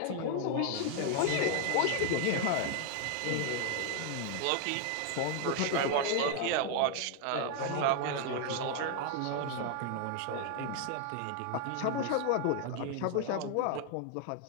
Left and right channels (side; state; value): both; different; correlation 0.00